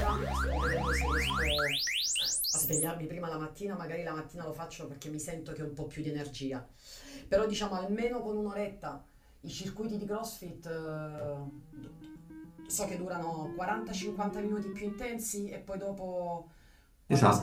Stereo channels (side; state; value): both; identical; correlation 1.00